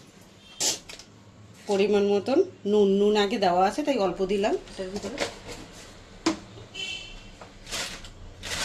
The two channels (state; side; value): identical; both; correlation 1.00